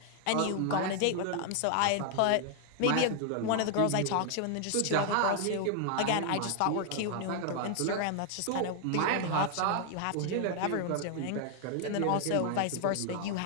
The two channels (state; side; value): different; both; correlation 0.00